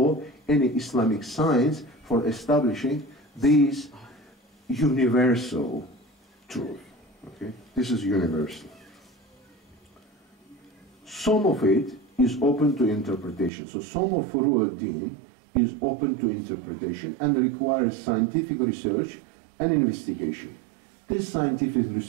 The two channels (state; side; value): drops out; left; at 13.5 s